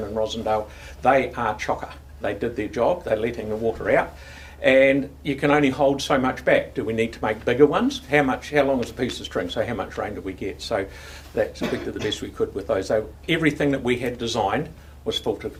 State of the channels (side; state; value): both; identical; correlation 1.00